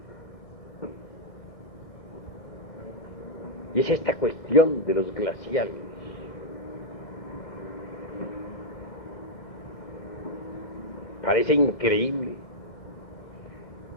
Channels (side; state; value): right; late; 1.6 ms